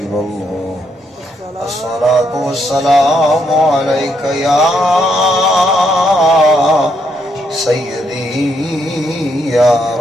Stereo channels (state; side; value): normal; both; correlation 0.76